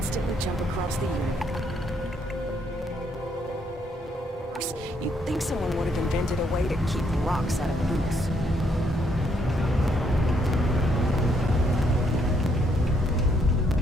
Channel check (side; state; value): both; normal; correlation 0.72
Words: jump across the universe. You'd think someone would have invented a way to keep rocks out of boots.